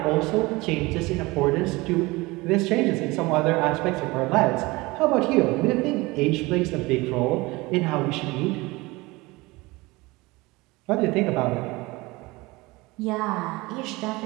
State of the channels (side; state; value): left; quieter; 22.4 dB